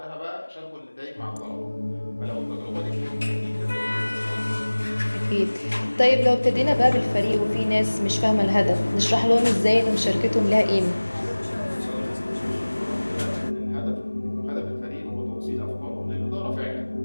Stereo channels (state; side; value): inverted; both; correlation -1.00